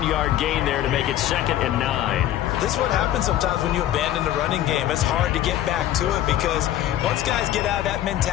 gain there to make it 2nd and 9. This is what happens sometimes when you abandon the running game. It's hard to get back to it because once guys get out of that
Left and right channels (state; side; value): quieter; right; 12.6 dB